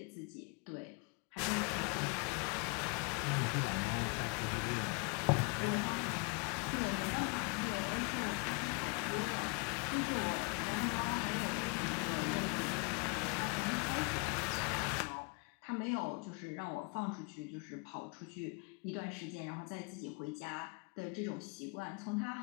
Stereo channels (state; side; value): quieter; right; 33.0 dB